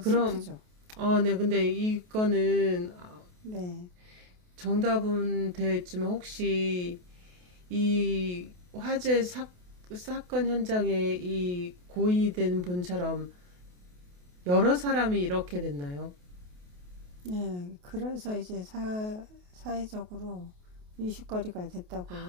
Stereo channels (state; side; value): late; left; 28 ms